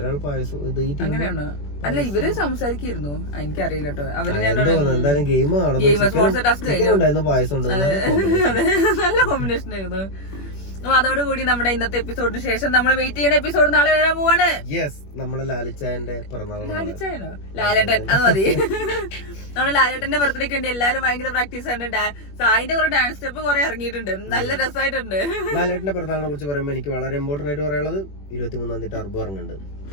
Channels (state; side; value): late; right; 21 ms